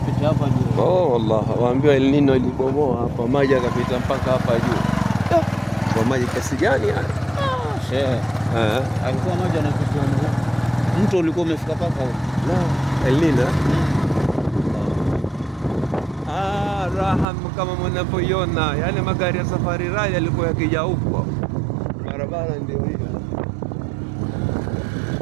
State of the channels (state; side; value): drops out; left; at 17.2 s